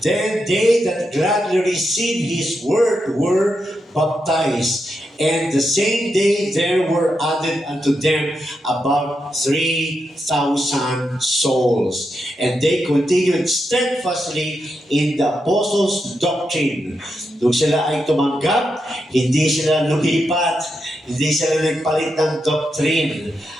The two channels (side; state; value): both; normal; correlation 0.85